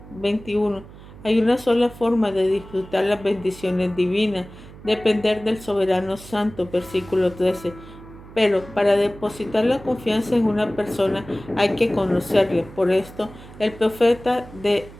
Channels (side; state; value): right; noise; hum, 18 dB below the sound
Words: Hay una sola forma de disfrutar las bendiciones divinas, depender del soberano santo. Versículo 13. Pero para depositar la confianza en una persona hay que conocerle. Por esto, el profeta